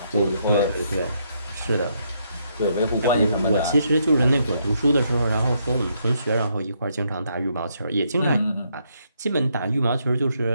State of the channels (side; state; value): both; inverted; correlation -0.75